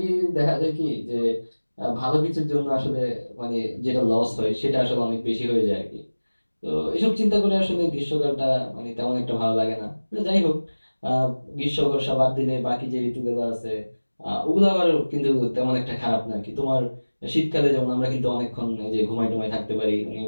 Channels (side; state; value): both; inverted; correlation -1.00